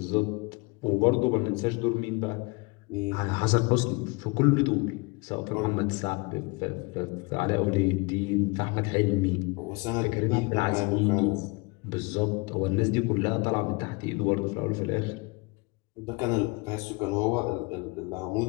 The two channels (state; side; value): quieter; right; 27.5 dB